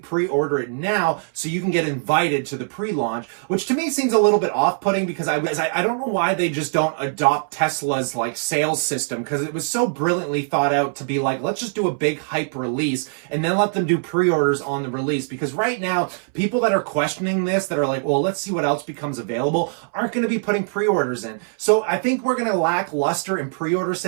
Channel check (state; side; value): silent; left; 64 dB below the other